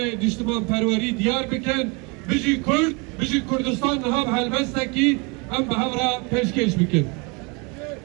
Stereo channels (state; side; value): quieter; left; 30.1 dB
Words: نشتمان پروری دیار بکن بجی کرد بجی کردستان نهاب هلوستا کی ام به را پیشکش بکن